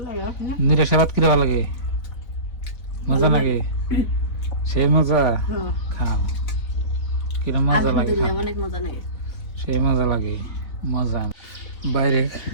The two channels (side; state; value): right; late; 3.9 ms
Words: লাগে নিরাশা ভাত কিরম লাগে? মজা লাগে, সেই মজা। খাও, কিরম মজা লাগে। অনেক মজা লাগে, সেই মজা লাগে, মজা। বাইরে